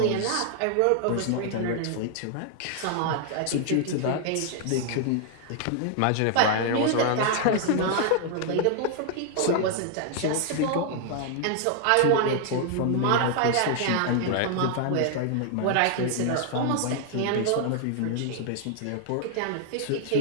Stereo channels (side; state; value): both; different; correlation 0.00